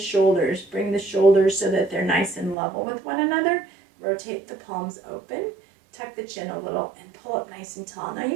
Bring the shoulders so that they're nice and level with one another. Rotate the palms open. Tuck the chin a little and pull up nice and tall. Now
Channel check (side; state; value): left; drops out; at 2.6 s